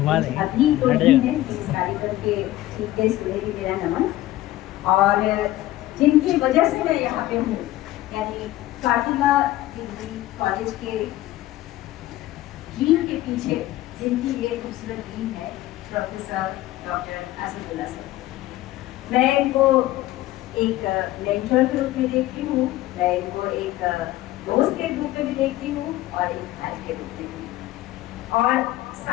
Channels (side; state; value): right; quieter; 15.6 dB